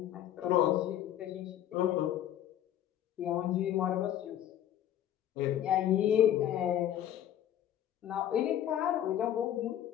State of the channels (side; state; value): right; quieter; 11.5 dB